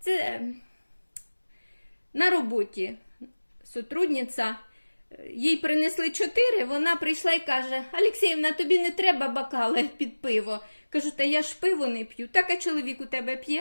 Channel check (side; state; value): both; inverted; correlation -1.00